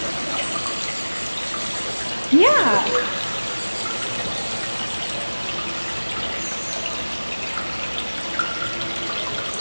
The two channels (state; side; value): inverted; both; correlation -1.00